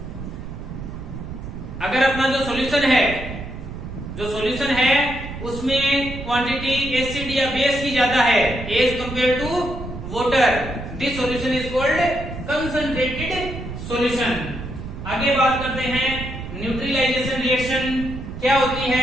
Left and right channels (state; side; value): noise; right; rumble, 9 dB below the sound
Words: अगर अपना जो सॉल्यूशन है उसमें क्वांटिटी एसिड या बेस की ज्यादा है as compare to water, this solution is called concentrated solution. आगे बात करते हैं न्यूट्रलाइजेशन रिएक्शन। क्या होती